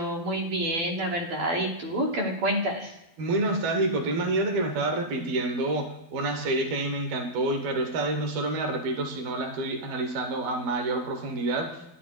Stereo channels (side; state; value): left; late; 12 ms